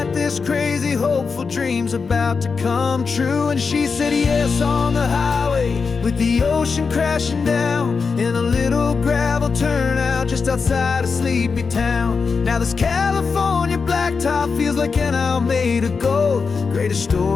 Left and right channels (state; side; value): quieter; right; 5.1 dB